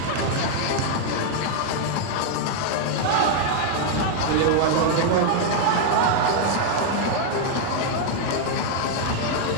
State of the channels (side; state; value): both; different; correlation 0.00